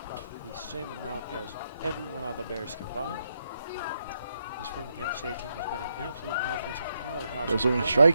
the same amount as everyone on the Bears combined. This Framingham State team has been an absolute offensive powerhouse. There's looking to Running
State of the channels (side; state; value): both; inverted; correlation -0.80